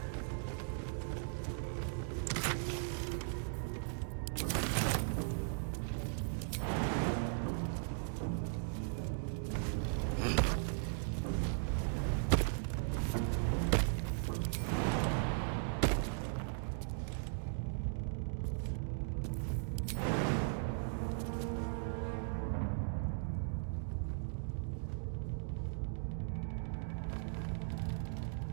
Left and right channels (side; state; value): left; silent; digital silence